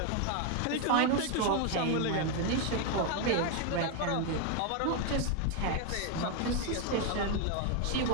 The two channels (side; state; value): both; different; correlation 0.01